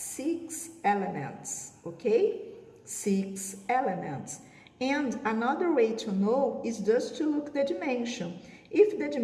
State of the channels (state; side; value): identical; both; correlation 1.00